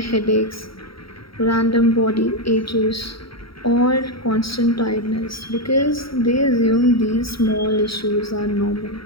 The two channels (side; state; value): right; late; 0.75 ms